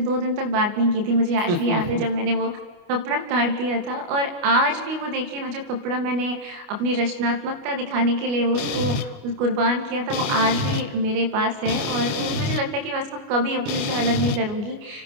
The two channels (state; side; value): late; left; 28 ms